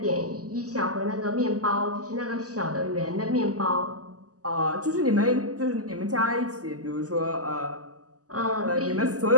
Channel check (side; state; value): left; late; 0.67 ms